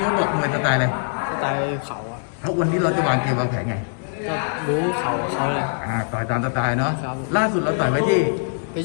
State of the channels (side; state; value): right; silent; digital silence